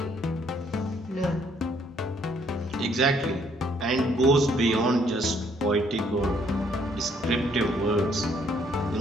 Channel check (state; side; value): normal; both; correlation 0.66